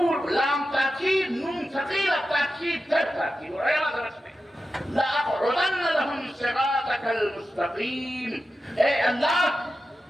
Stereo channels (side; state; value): both; normal; correlation 0.92